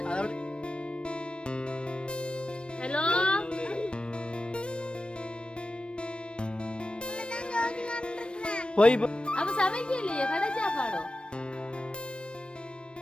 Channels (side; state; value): right; late; 0.057 ms